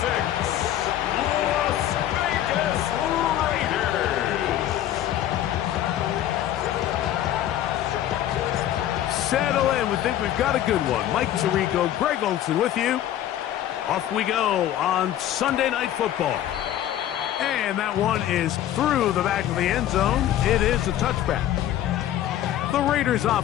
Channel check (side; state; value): right; quieter; 12.0 dB